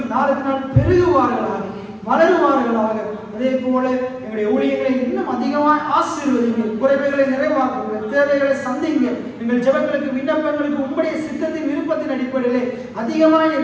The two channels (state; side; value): identical; both; correlation 1.00